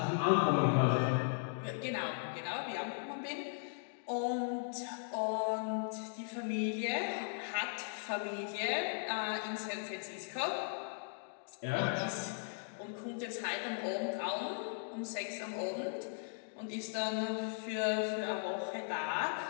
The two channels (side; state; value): right; silent; digital silence